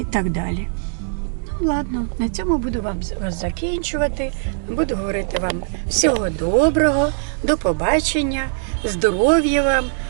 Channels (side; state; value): left; silent; digital silence